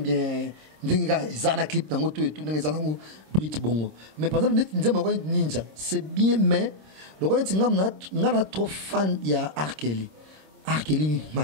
bien Zana clip dans tout et tout dans Brit Bongo. Mais par exemple, Ninja, c'est bien, mais le roi n'a trop fan il y a Arkeli,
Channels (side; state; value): left; late; 26 ms